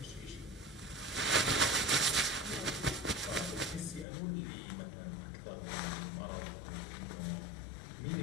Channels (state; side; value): drops out; right; at 4.0 s